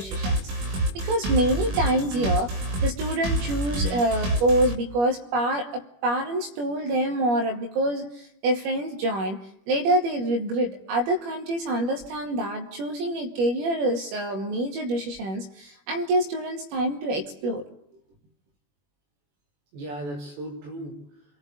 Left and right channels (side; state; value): left; late; 21 ms